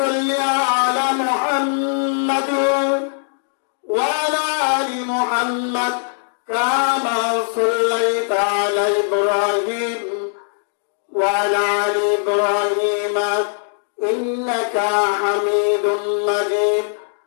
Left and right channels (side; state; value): right; silent; digital silence